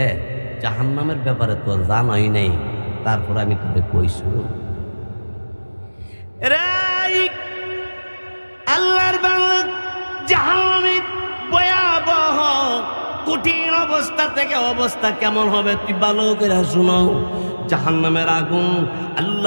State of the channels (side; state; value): both; inverted; correlation -1.00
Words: জাহান্নামের ব্যাপারে তো জানাই নাই, তারপর আমি তোকে কইছো আল্লাহর বাংলা জাহান্নামের ভয়াবহ কঠিন অবস্থা থেকে অবস্থা কেমন হবে তুই ভালো করে শুনো। জাহান্নামের আগুন